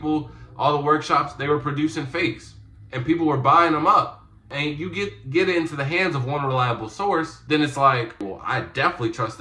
all the workshops, they were producing fakes, and people were buying them up. And you get it into the hands of one reliable source, then it's like, well, I definitely trust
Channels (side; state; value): both; identical; correlation 1.00